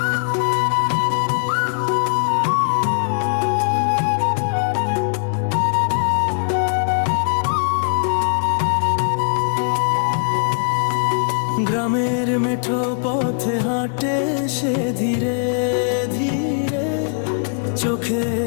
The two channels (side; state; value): right; silent; digital silence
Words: গ্রামের মেঠো পথে হাঁটে সে ধীরে ধীরে,